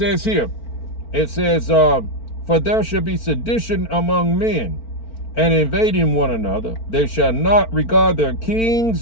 here, it says, for there shall be sedition among men, and invading one another. They shall not regard their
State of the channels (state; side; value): late; right; 4.4 ms